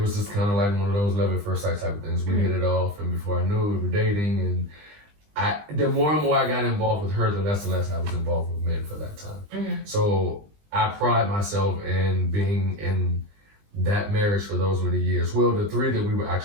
just kind of like one of those love at first sight type of things. We hit it off, and before I knew it, we were dating. And the more and more I got involved with her, the less and less I was involved with men for that time. Mm-hmm. So I pride myself in being in that marriage for those many years. Well, the 3 that we were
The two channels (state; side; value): late; left; 20 ms